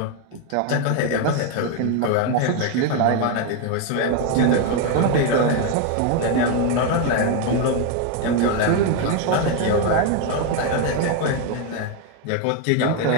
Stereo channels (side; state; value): both; different; correlation 0.01